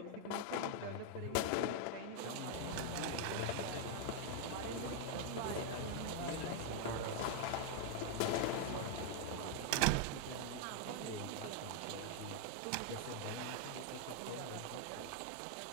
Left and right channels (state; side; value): different; both; correlation 0.00